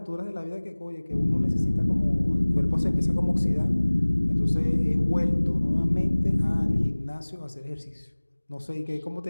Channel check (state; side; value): inverted; both; correlation -1.00